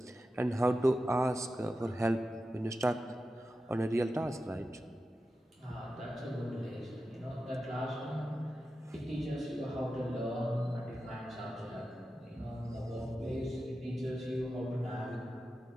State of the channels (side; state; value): both; normal; correlation 0.91